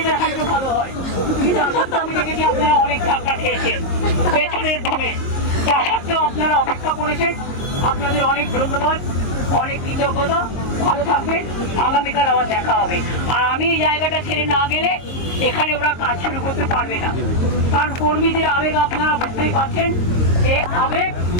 হাইটও ভালো হয়। কিন্তু আমি দেখেছি আপনারা অনেক ধাক্কা খেয়েছেন পেছনের ধরে, তা সত্ত্বেও আপনারা অপেক্ষা করেছেন। আপনাদের অনেক ধন্যবাদ, অনেক কৃতজ্ঞতা। ভালো থাকবেন, আগামীকাল আবার দেখা হবে। আর আমি এই জায়গাটা ছেড়ে না গেলে এখানে ওরা কাজ শুরু করতে পারবে না, কারণ কর্মীদের আবেগ আপনারা বুঝতেই পারছেন। এই আবেগ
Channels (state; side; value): late; right; 22 ms